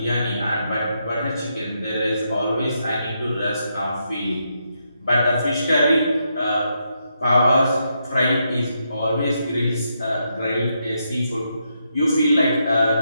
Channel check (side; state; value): both; inverted; correlation -0.81